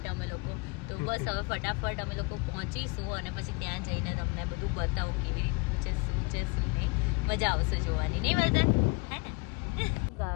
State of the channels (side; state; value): right; quieter; 28.3 dB